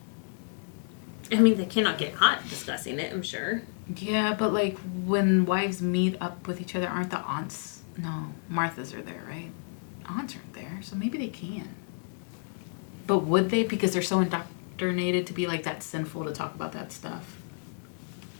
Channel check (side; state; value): right; silent; digital silence